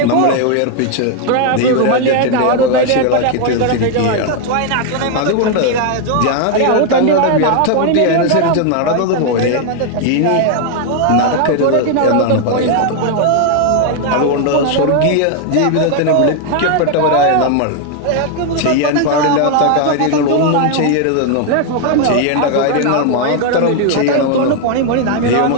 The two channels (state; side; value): different; both; correlation 0.00